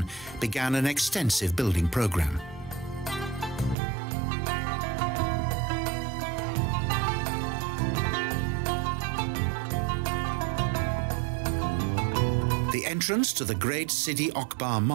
began an extensive building program. The entrance to the great Sidi Okbar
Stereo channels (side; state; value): left; drops out; at 3.8 s